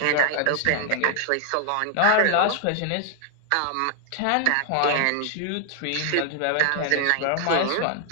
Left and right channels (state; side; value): different; both; correlation 0.00